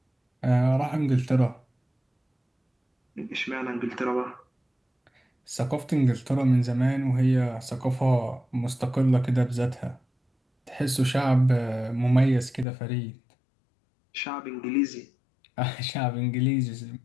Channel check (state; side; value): drops out; right; at 12.7 s